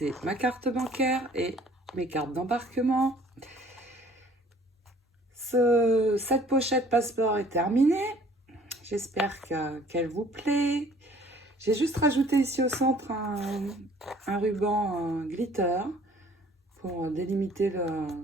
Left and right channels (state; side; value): normal; both; correlation 0.55